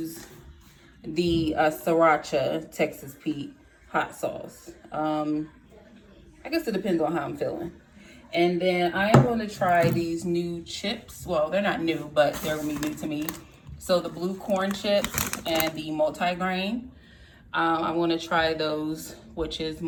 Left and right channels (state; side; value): identical; both; correlation 1.00